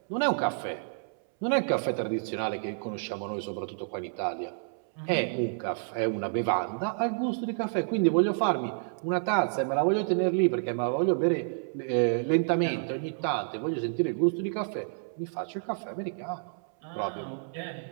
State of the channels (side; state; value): left; silent; 58 dB below the other